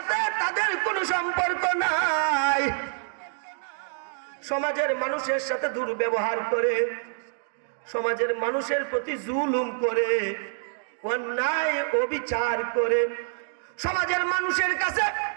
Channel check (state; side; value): silent; left; digital silence